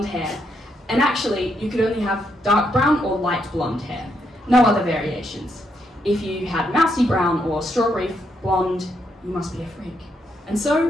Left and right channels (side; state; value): both; normal; correlation 0.78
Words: hair, and actually you could only have dark brown or light blonde hair. No other variations. If you had mousy brown or strawberry blonde, you must be a freak. And so